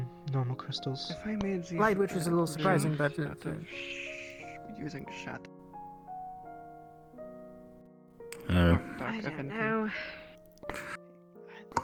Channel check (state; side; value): identical; both; correlation 1.00